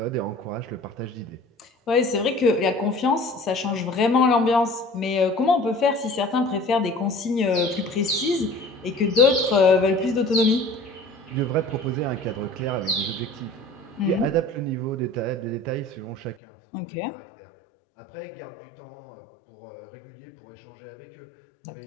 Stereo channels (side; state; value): right; drops out; at 16.4 s